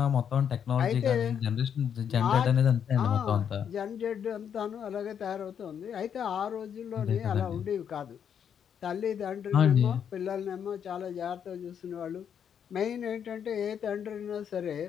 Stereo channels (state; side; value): quieter; right; 8.2 dB